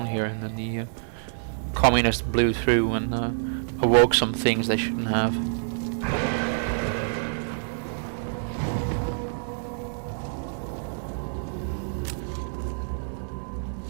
here, and then the communists blew through and awoke some things they shouldn't have.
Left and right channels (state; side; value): silent; left; digital silence